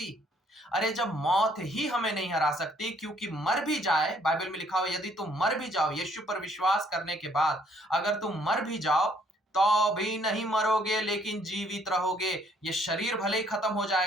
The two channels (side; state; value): both; normal; correlation 0.65